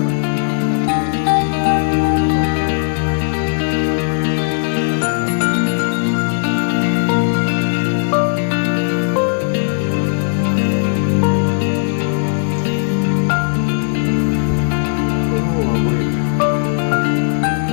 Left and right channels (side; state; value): right; silent; 62 dB below the other